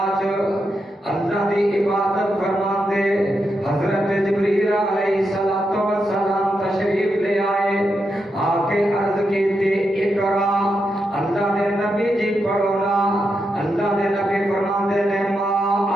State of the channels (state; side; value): normal; both; correlation 0.85